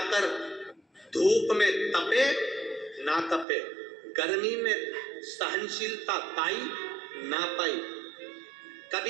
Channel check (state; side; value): drops out; left; at 3.5 s